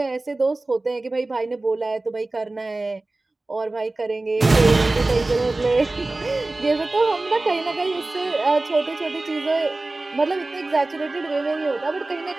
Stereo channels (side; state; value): left; quieter; 3.0 dB